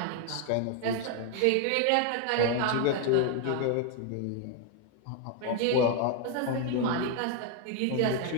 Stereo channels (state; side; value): different; both; correlation 0.00